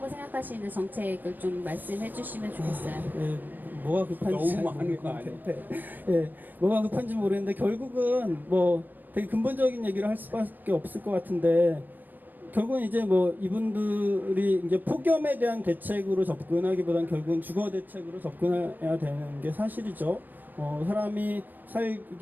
생각하시는 정책을 좀 말씀해 주시면 좋겠어요. 뭐가 급한지 너무 많은 거 아니에요? 뭐가 급한지 모르겠는데 결국은 되게 근본적인 얘기를 할 수밖에 없을 것 같은데 결국은 이제 이분들이 이제 폭염에 대한 대책으로 접근하기보다는 결국은 주거 대책으로 접근해야 되는 게 사실이죠. 사람이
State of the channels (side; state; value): left; late; 0.087 ms